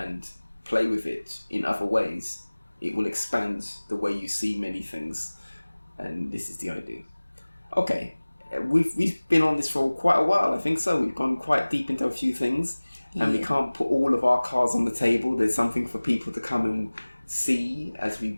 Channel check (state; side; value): inverted; both; correlation -1.00